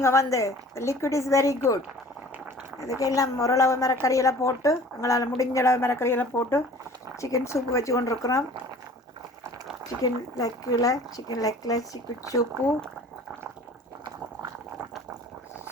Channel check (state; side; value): normal; both; correlation 0.47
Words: வந்து. Liquid is very good. இதுக்கு எல்லாம் ஓரளவு மிரக்கறியெல்லாம் போட்டு, எங்களால் முடிஞ்ச அளவு மிரக்கறியெல்லாம் போட்டு சிக்கன் சூப்பு வச்சு கொண்டிருக்கிறோம். சிக்கன் லெக்கில் chicken soup.